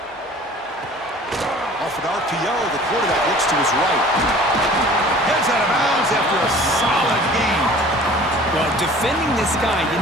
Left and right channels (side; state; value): both; normal; correlation 0.47